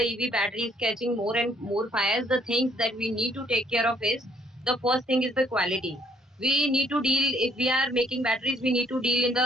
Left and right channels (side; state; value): both; normal; correlation 0.65